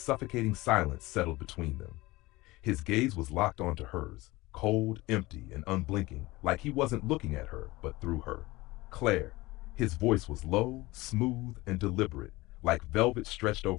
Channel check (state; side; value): quieter; right; 20.5 dB